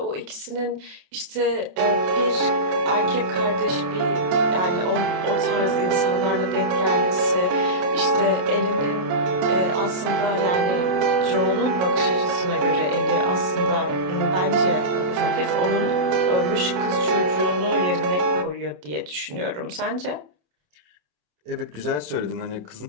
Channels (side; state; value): left; late; 27 ms